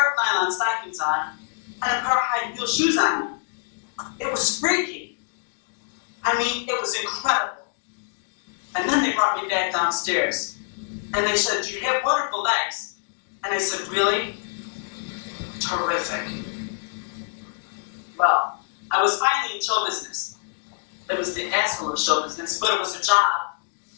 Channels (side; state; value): right; silent; digital silence